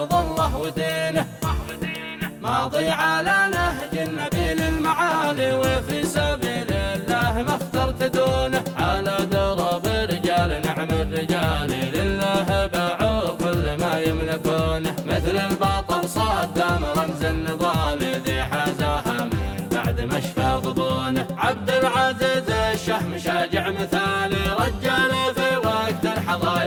الله ودينه، ماضي على نهج النبي للمعالي، وفي سبيل الله ما اخترت دونه، على درب رجال نعم الرجال لله باعوا كل ما يملكونه، مثل البطل صدام رمز النضال ذي حازاها من بعد ما شفى ضبونه، عبد العزيز الشهم شاجع مثالي، رجال في وقت الحظا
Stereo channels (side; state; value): both; identical; correlation 1.00